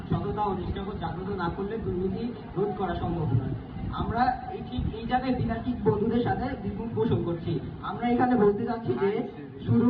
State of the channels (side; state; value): both; identical; correlation 1.00